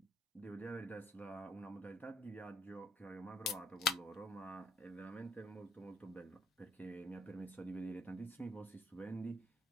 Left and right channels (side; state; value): both; normal; correlation 0.66